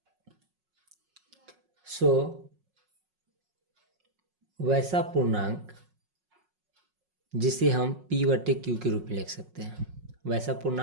वैसा पूर्णांक जिसे हम p/q के रूप में लिख सकते हैं, वैसा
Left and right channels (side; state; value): left; late; 5.5 ms